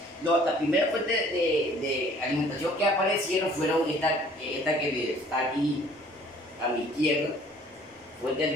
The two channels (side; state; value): both; normal; correlation 0.55